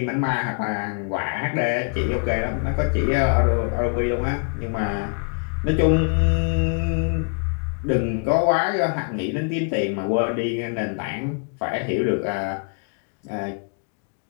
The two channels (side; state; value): right; quieter; 38.9 dB